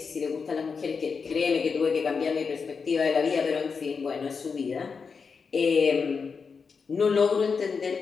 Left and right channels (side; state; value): right; quieter; 5.4 dB